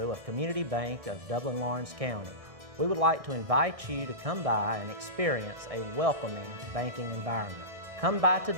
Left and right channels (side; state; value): left; late; 1.6 ms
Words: of Community Bank of Dublin-Lawrence County. We would like to invite you to come by and experience a welcoming banking environment. Come by